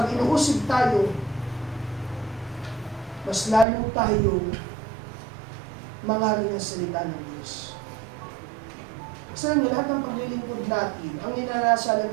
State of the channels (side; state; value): left; drops out; at 3.7 s